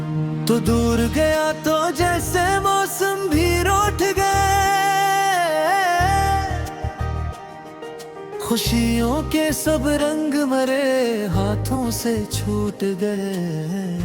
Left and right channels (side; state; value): both; identical; correlation 1.00